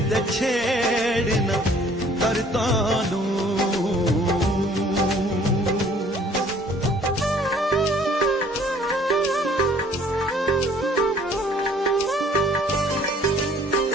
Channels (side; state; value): both; normal; correlation 0.56